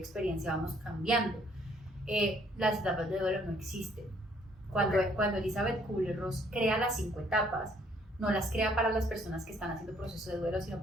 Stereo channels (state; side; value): normal; both; correlation 0.64